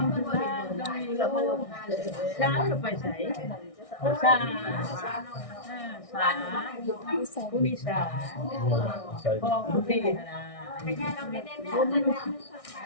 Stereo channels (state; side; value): late; right; 1.6 ms